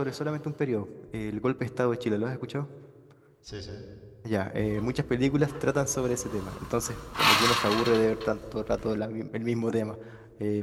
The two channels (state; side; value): identical; both; correlation 1.00